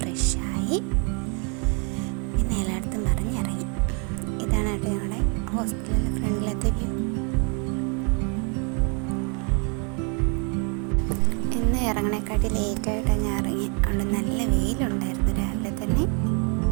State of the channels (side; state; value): left; quieter; 36.8 dB